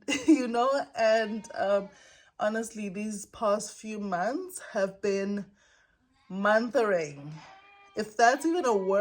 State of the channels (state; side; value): identical; both; correlation 1.00